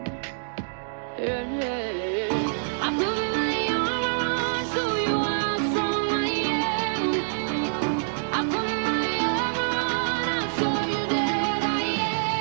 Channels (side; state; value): left; silent; digital silence